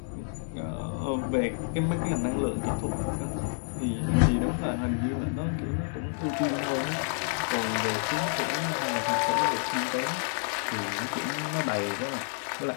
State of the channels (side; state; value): right; silent; 58 dB below the other